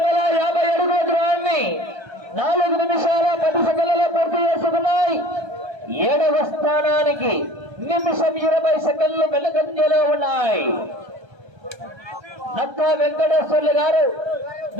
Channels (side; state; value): left; late; 1.3 ms